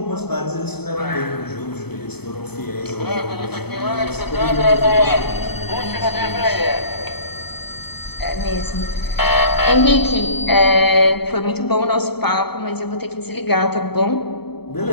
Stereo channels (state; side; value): late; right; 0.97 ms